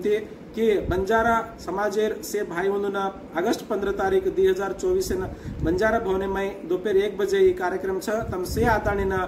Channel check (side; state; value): both; identical; correlation 1.00